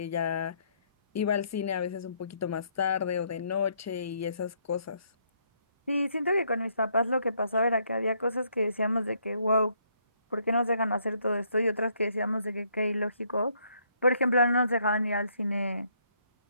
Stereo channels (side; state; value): both; inverted; correlation -0.70